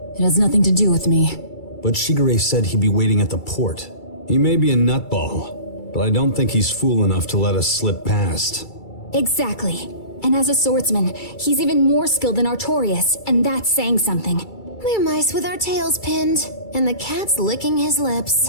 has nothing to do with me. But Shigure said he'd be waiting at the port. He may be a nutball, but I don't think he's fool enough to let us slip past. Exactly. And as a swordsman, he's even more skilled than Artorias, and that's saying something. We're mice with our tails pinned, and the cat's licking his lips.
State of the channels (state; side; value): late; right; 2.3 ms